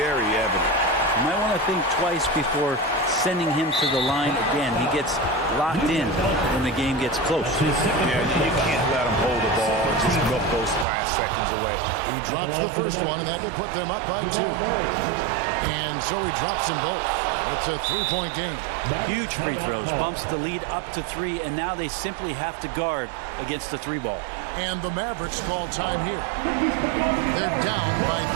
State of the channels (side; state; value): left; drops out; at 10.9 s